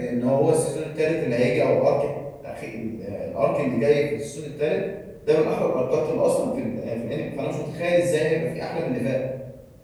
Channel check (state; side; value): identical; both; correlation 1.00